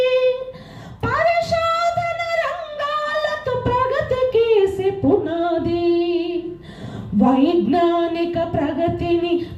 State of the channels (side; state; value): both; identical; correlation 1.00